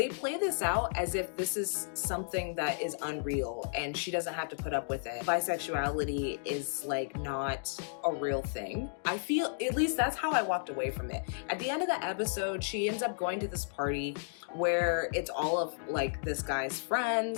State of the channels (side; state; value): right; silent; digital silence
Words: play this out as if this is something that is unreal and she doesn't have to put up with it. Bisexuality is like not a real thing. I feel, at least that's how I walked away from it. At the end of the episode, she ends up going to this party where it's all of like this guy's